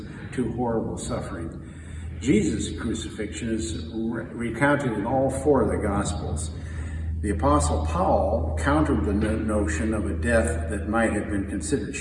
to horrible suffering. Jesus' crucifixion is recounted in all four of the Gospels. The Apostle Paul countered the notion of a death that might have been considered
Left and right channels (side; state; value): both; identical; correlation 1.00